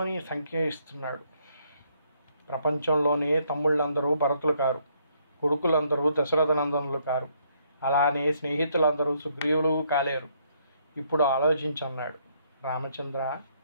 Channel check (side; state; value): both; inverted; correlation -0.70